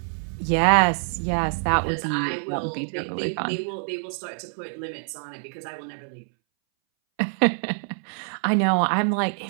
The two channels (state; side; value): silent; left; 62 dB below the other